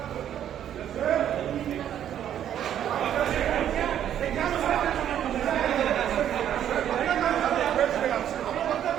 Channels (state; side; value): quieter; left; 10.3 dB